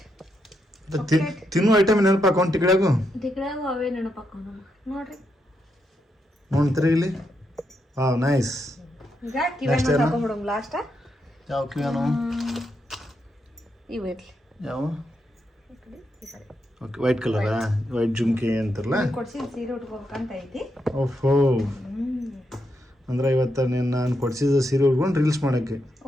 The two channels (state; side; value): normal; both; correlation 0.82